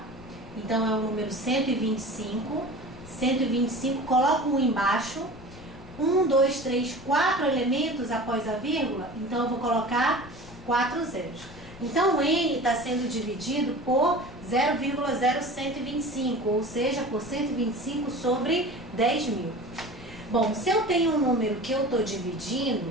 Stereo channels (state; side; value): noise; left; rumble, 18 dB below the sound